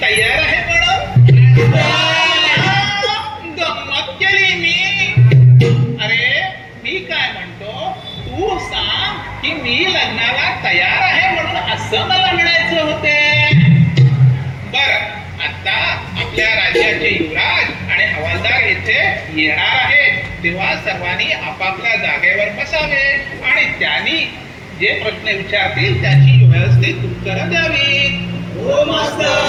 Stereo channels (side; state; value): both; identical; correlation 1.00